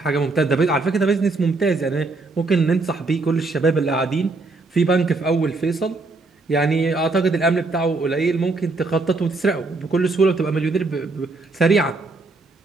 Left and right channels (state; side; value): quieter; left; 3.5 dB